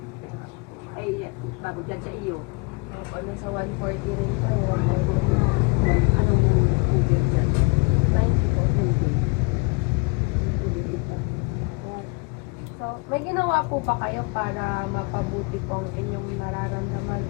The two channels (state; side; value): quieter; right; 29.1 dB